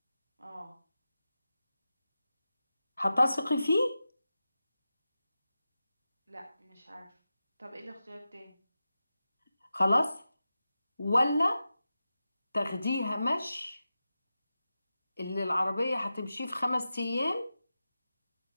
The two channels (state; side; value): inverted; both; correlation -0.93